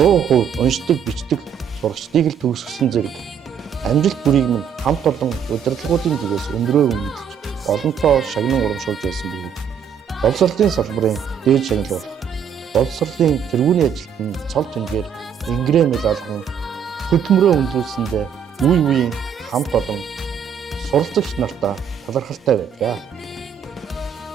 уншдаг, бичдэг сурагчдыг л төгсгсөн зэрэг амжилт бүрийг минь хамт олон удирдлагуудын зүгээс өндрөө үнэлж олонтоо шагнан урамшуулж байсан бөгөөд боловсролын салбарын дээд шагналуулах боловсролын тэргүүний ажилтны цол тэнгээр ингрэм алган хөдөлмөрөө өндөрлсөндөө үе үеийн хамт олон суралцагч нартаа талархалтай байдаг.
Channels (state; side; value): quieter; left; 7.8 dB